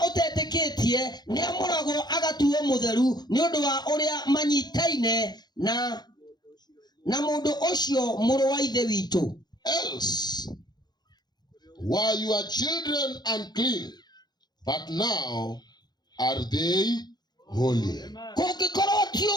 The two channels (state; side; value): late; right; 0.20 ms